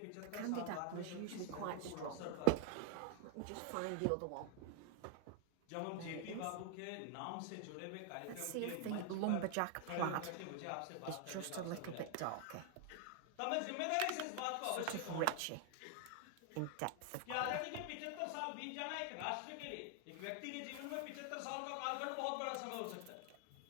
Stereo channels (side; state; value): both; different; correlation 0.00